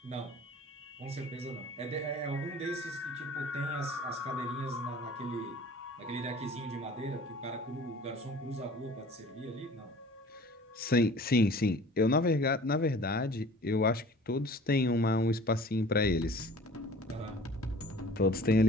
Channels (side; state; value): both; normal; correlation 0.46